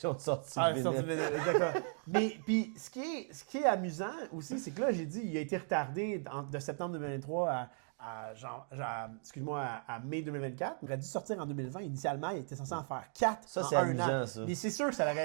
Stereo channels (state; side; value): silent; left; 53 dB below the other